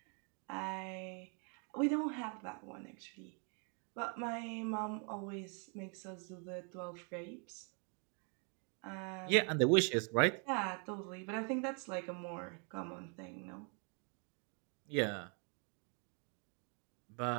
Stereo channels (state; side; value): quieter; left; 38.1 dB